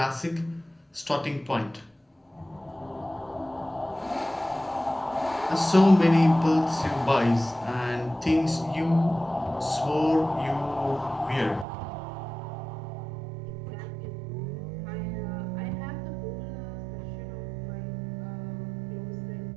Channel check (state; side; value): drops out; left; at 11.7 s